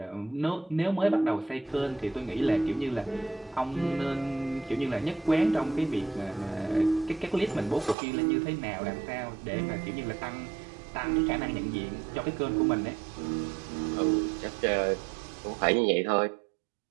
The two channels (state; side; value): drops out; left; at 8.0 s